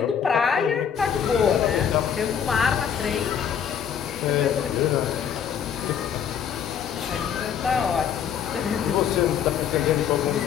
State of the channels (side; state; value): right; quieter; 8.2 dB